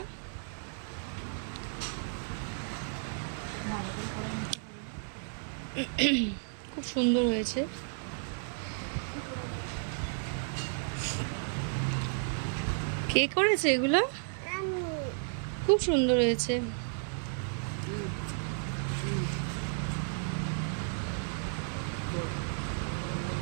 খুব সুন্দর হয়েছে। কে করেছে এগুলো? খুব সুন্দর হয়েছে।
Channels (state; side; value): silent; left; digital silence